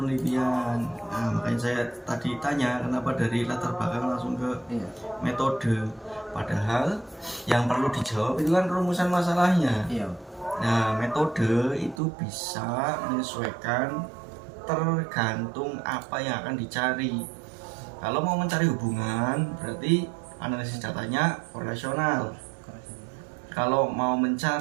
Nah, makanya saya tadi tanya kenapa dari latar belakang langsung ke metode, padahal yang perlu dijawab itu kan rumusan masalahnya. Nah, metode itu bisa menyesuaikan tergantung apa yang akan dicari. Kalau mau mencari hubungan berarti analisis datanya korelasional. Kalau mau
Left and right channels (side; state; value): left; drops out; at 12.0 s